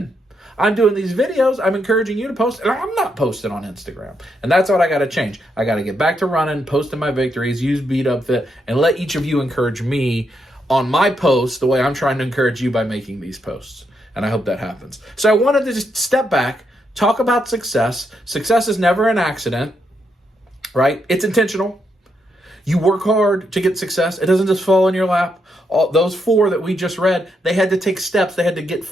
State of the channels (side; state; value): both; normal; correlation 0.80